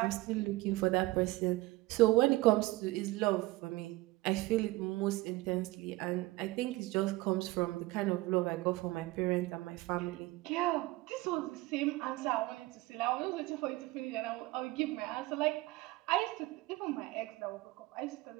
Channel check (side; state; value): left; quieter; 20.1 dB